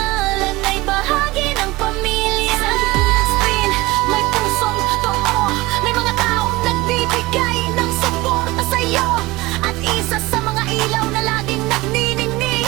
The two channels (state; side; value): quieter; left; 20.8 dB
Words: ay bahagi ng pamilya. Sa screen, may pusong totoo, may mga taong nagbibigay ng suporta sa'yo. At isa sa mga ilaw na laging nagniningning